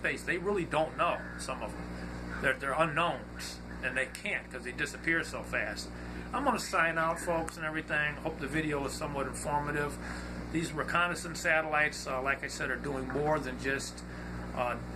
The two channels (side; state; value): both; identical; correlation 1.00